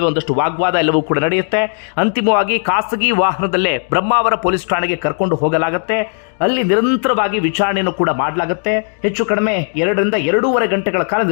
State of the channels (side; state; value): right; silent; digital silence